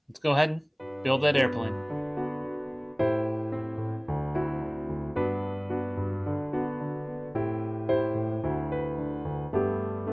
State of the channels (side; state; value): both; identical; correlation 1.00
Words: Let's go ahead and build that airplane.